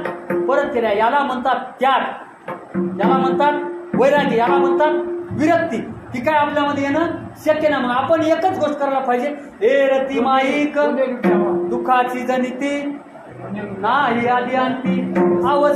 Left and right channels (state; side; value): identical; both; correlation 1.00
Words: परत केल्या. याला म्हणतात त्याग, याला म्हणतात वैरागी, याला म्हणतात विरक्ती. ती काय आपल्यामध्ये येणं शक्य नाही. मग आपण एकच गोष्ट करायला पाहिजे, हे रती माईक दुःखाची जनिती नाही आदी अंती